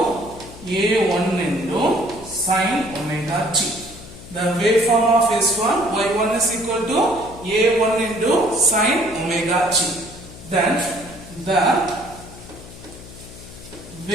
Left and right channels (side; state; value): left; noise; hum, 17 dB below the sound